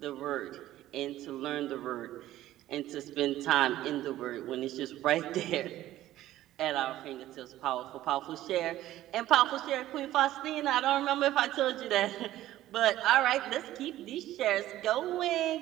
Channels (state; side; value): quieter; left; 14.3 dB